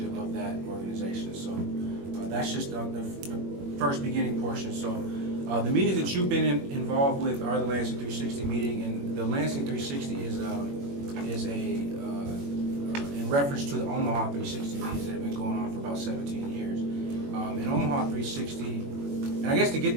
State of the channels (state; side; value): late; left; 21 ms